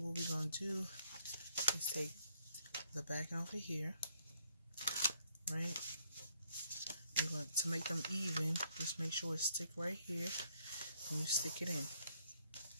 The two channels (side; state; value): both; inverted; correlation -0.67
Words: we're gonna do is take the back over here, right? We're going to make them even. Just make sure it stick right here, and you stick it in.